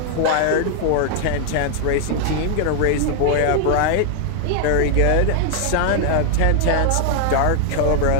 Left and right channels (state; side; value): different; both; correlation 0.00